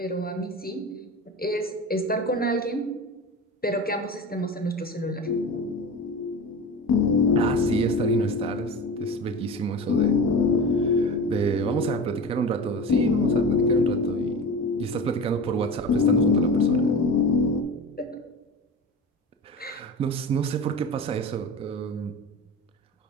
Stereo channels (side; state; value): both; normal; correlation 0.30